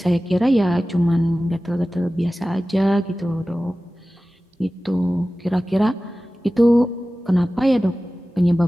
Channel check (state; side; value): normal; both; correlation 0.96